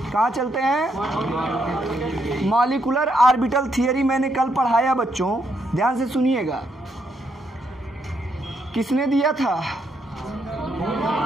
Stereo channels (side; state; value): both; normal; correlation 0.77